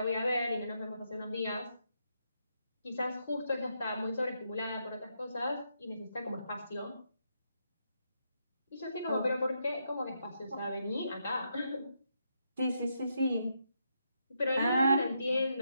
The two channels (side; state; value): both; inverted; correlation -0.80